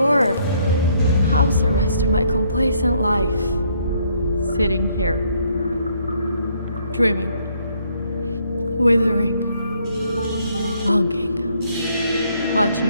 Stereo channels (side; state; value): both; inverted; correlation -0.68